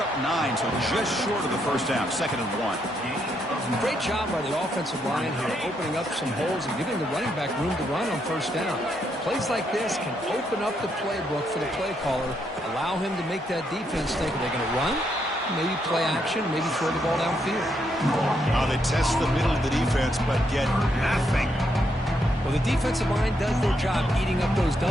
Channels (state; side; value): normal; both; correlation 0.77